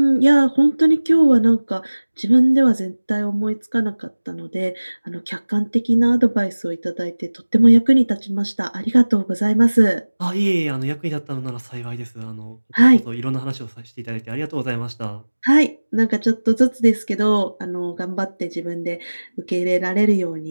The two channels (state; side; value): inverted; both; correlation -1.00